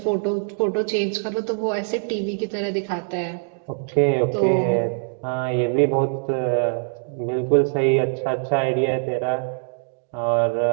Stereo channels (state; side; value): silent; left; digital silence